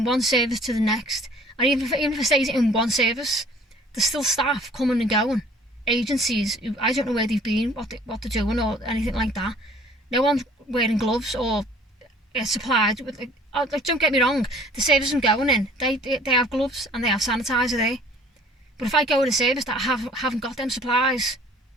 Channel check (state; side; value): normal; both; correlation 0.52